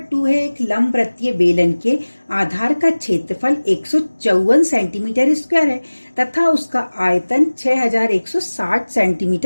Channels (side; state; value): both; inverted; correlation -1.00